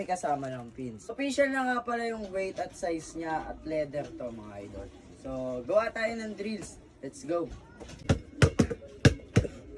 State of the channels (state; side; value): identical; both; correlation 1.00